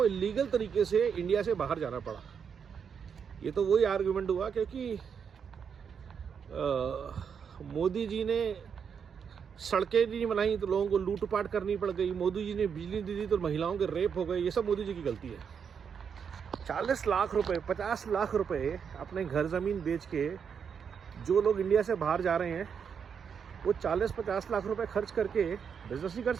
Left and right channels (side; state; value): left; quieter; 6.9 dB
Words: इलीगल तरीके से इंडिया से बाहर जाना पड़ा। ये तो वही आर्गुमेंट हुआ क्योंकि मोदी जी ने सड़कें नहीं बनाई तो लोगों को लूटपाट करनी पड़ गई, मोदी जी ने बिजली दी तो महिलाओं के रेप हो गए। ये सब मोदी जी की गलती है। 40 लाख रुपए 50 लाख रुपए अपने घर ज़मीन बेच के जो लोग इंडिया से बाहर जा रहे हैं वो 40-50 लाख रुपए खर्च करके बिजनेस नहीं कर